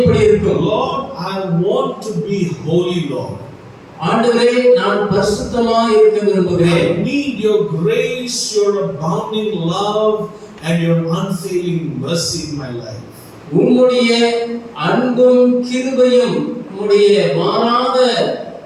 இருக்கும். Lord, I want to be holy, Lord. ஆண்டவரே, நான் பரிசுத்தமாய் இருக்க விரும்புகிறேன். I need your grace, your abounding love and your unfailing mercy in my life. உம்முடைய அன்பும் கிருபையும் உம்முடைய மாறாத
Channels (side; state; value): both; identical; correlation 1.00